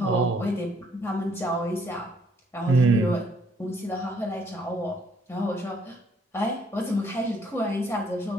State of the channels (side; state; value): both; normal; correlation 0.66